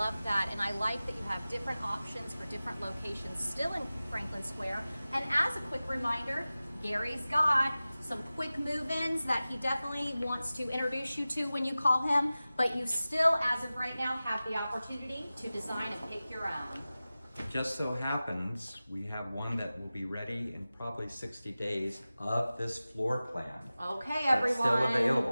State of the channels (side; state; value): both; inverted; correlation -0.96